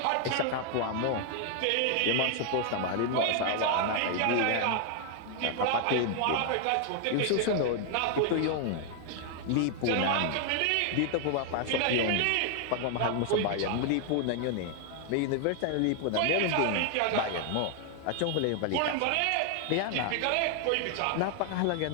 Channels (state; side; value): different; both; correlation 0.00